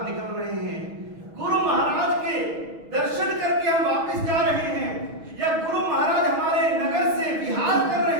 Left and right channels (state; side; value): late; left; 6.3 ms